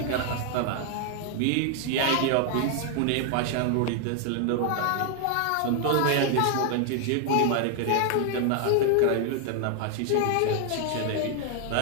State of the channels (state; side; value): different; both; correlation 0.00